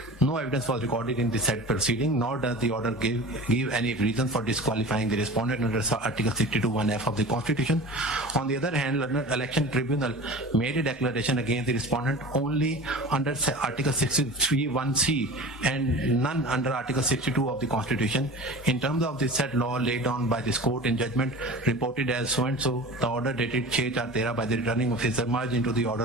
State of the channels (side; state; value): both; normal; correlation 0.36